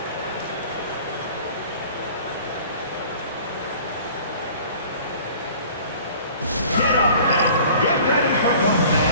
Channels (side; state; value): both; inverted; correlation -0.47